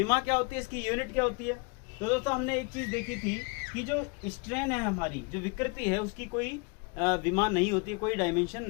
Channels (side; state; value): right; quieter; 31.5 dB